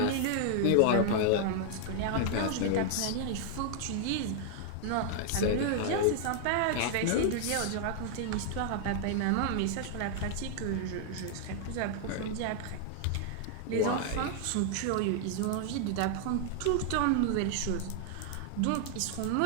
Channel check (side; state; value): both; different; correlation 0.00